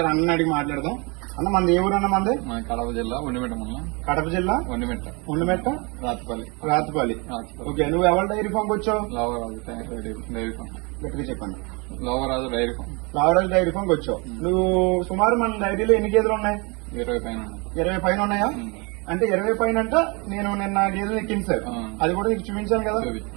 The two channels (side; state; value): left; quieter; 29.7 dB